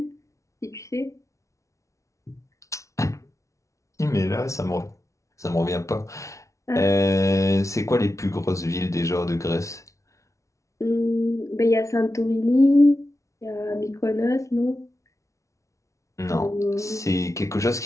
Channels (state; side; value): late; right; 0.15 ms